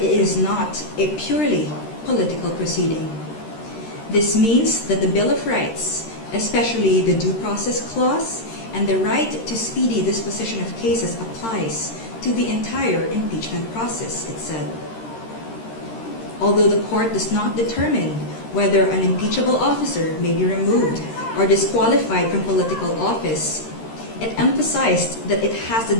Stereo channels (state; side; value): late; right; 13 ms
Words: is not a purely political proceeding. This means that the Bill of Rights, especially the Due Process Clause and the right to speedy disposition of cases, applies to the entire impeachment process, it said. Although the court does not determine whether an impeachable officer may be removed or disqualified from political office, it emphasized that it has the